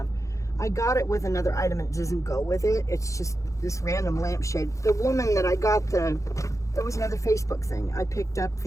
I got it with another item and it doesn't go with it. It's just this random lamp shade. The woman that I got there was another Facebook thing. I picked up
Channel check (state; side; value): late; right; 0.15 ms